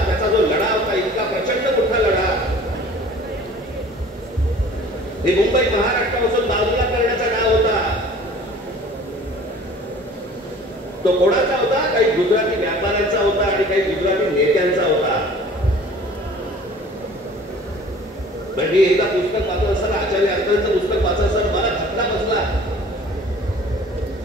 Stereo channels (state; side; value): normal; both; correlation 0.47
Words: त्याचा जो लढा होता, इतका प्रचंड मोठा लढा, हे मुंबई महाराष्ट्रापासून बाजूला करण्याचा डाव होता. तो कोणाचा होता? काही गुजराती व्यापाऱ्यांचा होता आणि काही गुजराती नेत्यांचा होता. मी एकदा पुस्तक वाचत असताना, आचार्य अत्तरचं पुस्तक वाचत असताना मला धक्का बसला